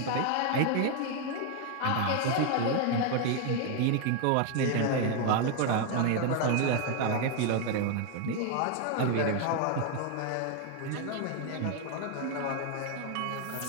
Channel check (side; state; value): both; different; correlation 0.01